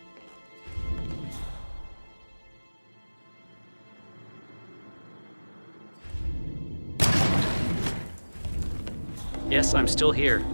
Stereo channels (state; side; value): inverted; both; correlation -1.00